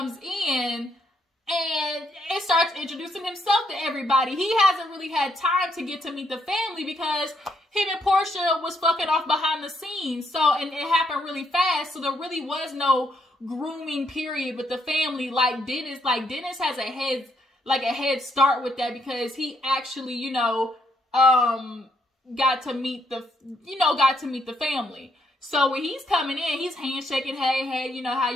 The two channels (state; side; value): normal; both; correlation 0.74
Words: in and it starts introducing himself to everybody. He hasn't really had time to get to meet the family because him and Porsha was fucking off behind the scenes. So, and it happened really fast. So there really was no grooming period with the family. Like Dennis has a head start with that because he actually, you know, got to meet the family. So when he's coming in, he's handshaking, hey, you know, how